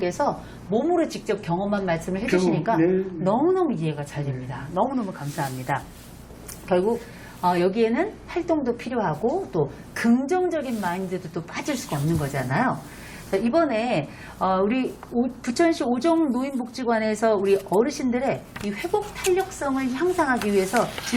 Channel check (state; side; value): identical; both; correlation 1.00